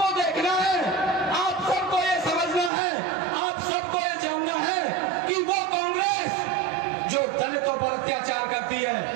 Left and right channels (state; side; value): drops out; left; at 2.7 s